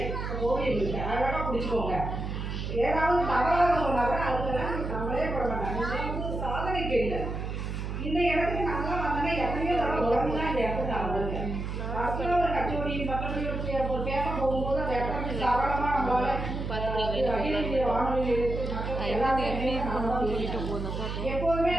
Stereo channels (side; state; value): right; noise; hum, 4 dB below the sound